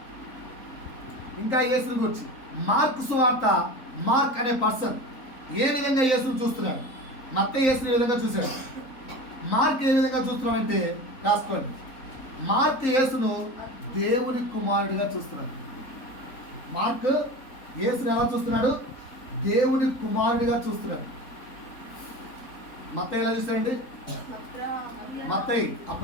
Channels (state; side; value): late; right; 3.9 ms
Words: గూర్చి మార్కు సువార్త, మార్క్ అనే పర్సన్ ఏ విధంగా యేసును చూస్తున్నాడు? మత్తయి యేసుని ఏ విధంగా చూశాడు, మార్క్ ఏ విధంగా చూస్తున్నాడంటే రాసుకోండి. మార్క్ యేసును దేవుని కుమారుడిగా చూస్తున్నాడు. మార్క్ యేసుని ఎలా చూస్తున్నాడు? దేవుని కుమారుడిగా చూస్తున్నాడు. మత్తయి ఎలా చూస్తాడండి? మత్తయి